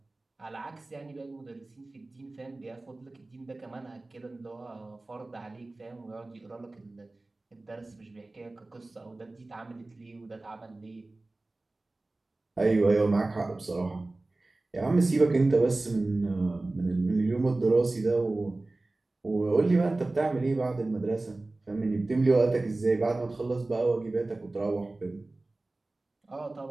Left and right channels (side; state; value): left; quieter; 3.0 dB